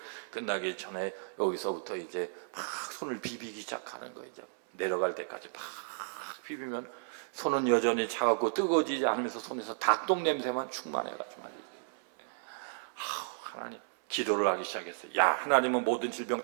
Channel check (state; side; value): silent; left; 55 dB below the other